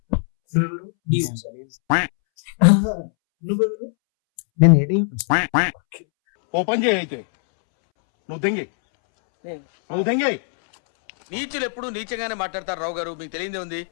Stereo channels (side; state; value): right; silent; 65 dB below the other